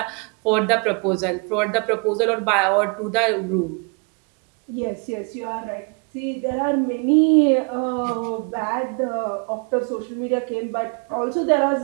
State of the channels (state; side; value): quieter; left; 34.6 dB